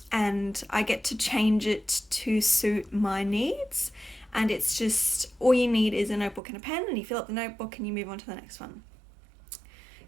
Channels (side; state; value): left; drops out; at 6.4 s